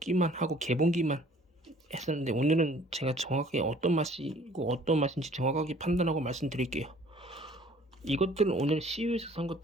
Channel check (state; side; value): normal; both; correlation 0.54